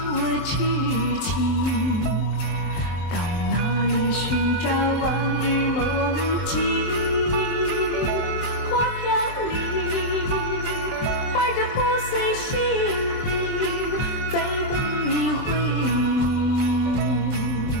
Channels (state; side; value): late; right; 23 ms